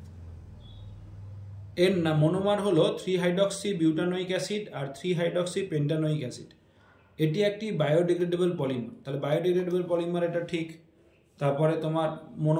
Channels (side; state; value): both; identical; correlation 1.00